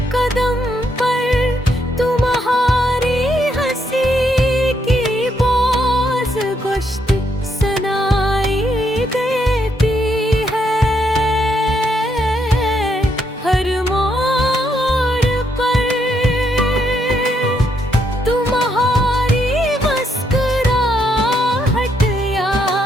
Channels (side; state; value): both; normal; correlation 0.76